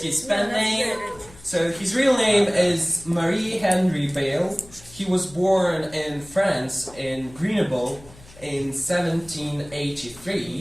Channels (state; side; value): noise; left; hum, 22 dB below the sound